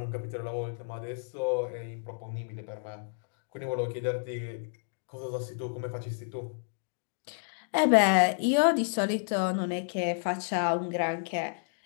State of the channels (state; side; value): silent; right; digital silence